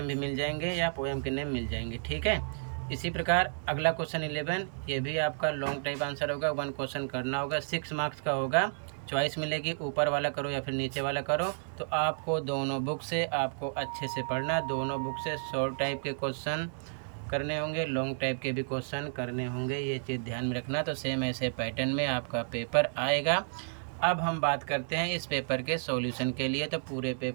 भी मिल जाएंगे या पोएम के नेम मिल जाएंगे, ठीक है। इसी प्रकार अगला क्वेश्चन 11, ये भी आपका लॉन्ग टाइप आंसर होगा, 1 क्वेश्चन करना होगा, 6 मार्क्स का होगा। चॉइस मिलेगी, ऊपर वाला करो या फिर नीचे वाला करो। तो आपको दोनों बुक से आपको अच्छे से पढ़ना है, दोनों बुक से शॉर्ट टाइप के क्वेश्चन करने होंगे, लॉन्ग टाइप के भी क्वेश्चन करने होंगे, ये चीज़ ध्यान में रखना। तो सेम ऐसे पैटर्न में आपका पेपर आएगा। अब हम बात करते हैं इस पेपर के सॉल्यूशन के लिए। तो पूरे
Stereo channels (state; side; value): silent; left; digital silence